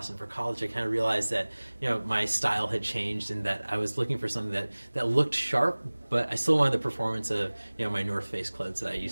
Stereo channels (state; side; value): inverted; both; correlation -1.00